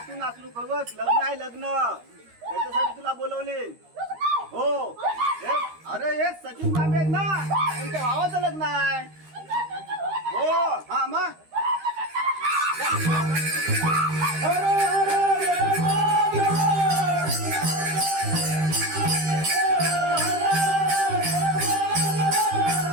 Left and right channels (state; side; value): late; left; 13 ms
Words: तू नाचलू बघ, लग्न आहे लग्न, त्याच्यासाठी तुला बोलवले. हो, अरे हे सचिन तांबे आहेत ना, त्यांच्या भावाचं लग्न आहे. हो, हा मग